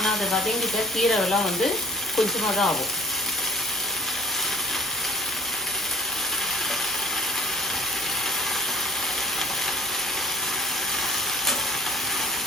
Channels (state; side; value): normal; both; correlation 0.51